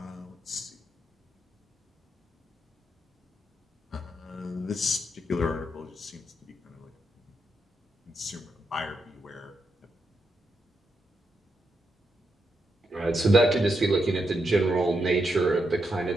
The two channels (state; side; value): normal; both; correlation 0.83